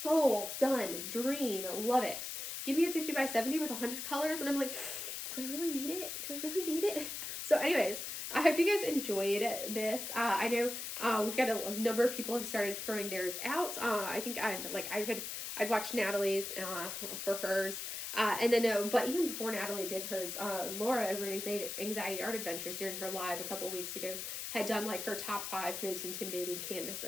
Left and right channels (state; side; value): noise; left; hiss, 5 dB below the sound